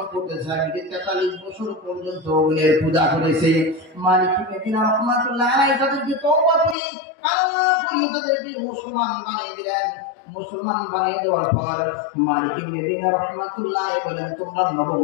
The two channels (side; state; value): right; drops out; at 6.8 s